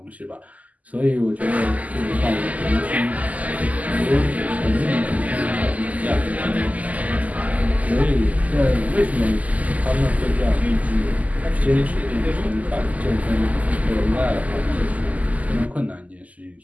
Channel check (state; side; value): late; left; 0.075 ms